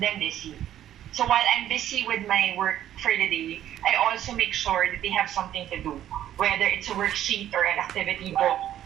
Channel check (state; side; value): quieter; left; 11.7 dB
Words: busy. So while I'm busy with my work for the day, I also make sure that they have something to do, whether it's a worksheet or an activity book